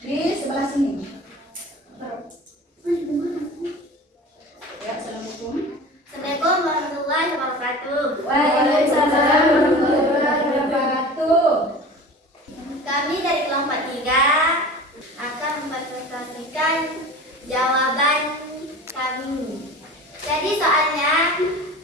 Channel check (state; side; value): normal; both; correlation 0.37